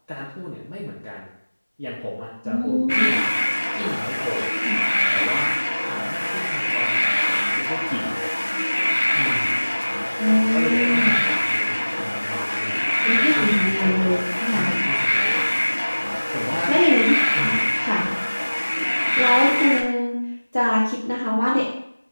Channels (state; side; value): inverted; both; correlation -1.00